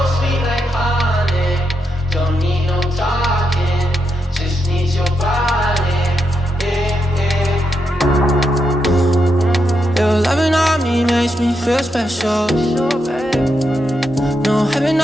Feel special. No heaven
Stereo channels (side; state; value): both; normal; correlation 0.83